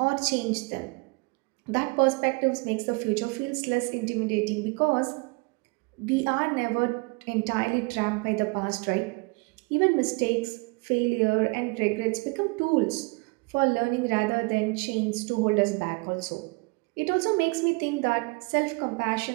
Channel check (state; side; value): quieter; left; 29.2 dB